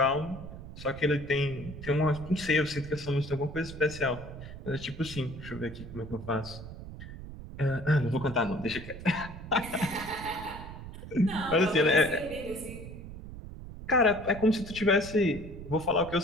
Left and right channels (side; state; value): right; noise; rumble, 12 dB below the sound